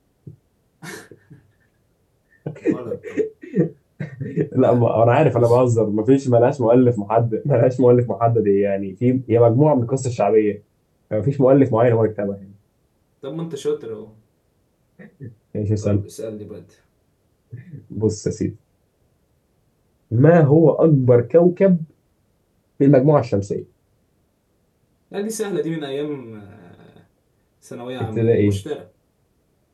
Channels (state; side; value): identical; both; correlation 1.00